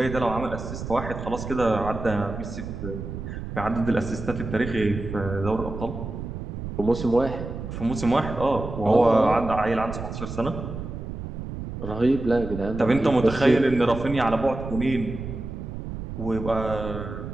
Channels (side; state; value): right; noise; rumble, 8 dB below the sound